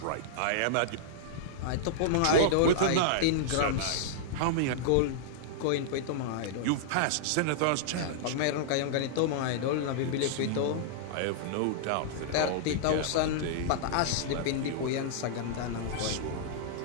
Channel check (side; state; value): both; different; correlation -0.02